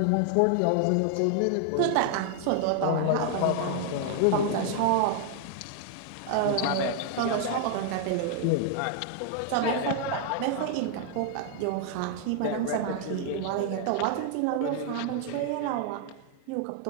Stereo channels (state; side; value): different; both; correlation 0.00